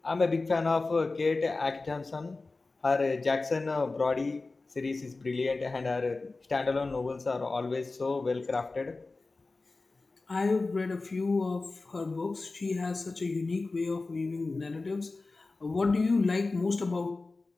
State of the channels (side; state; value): right; quieter; 3.5 dB